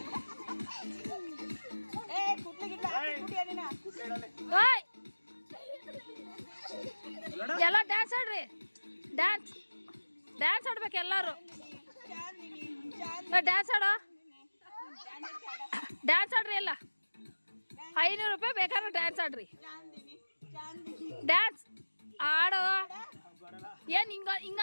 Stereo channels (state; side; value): inverted; both; correlation -1.00